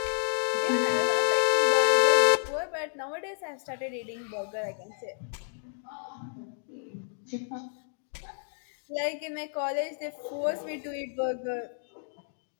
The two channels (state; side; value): silent; right; digital silence